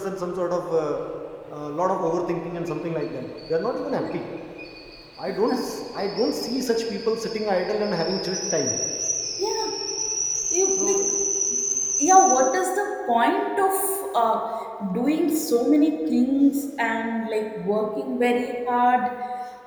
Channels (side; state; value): both; identical; correlation 1.00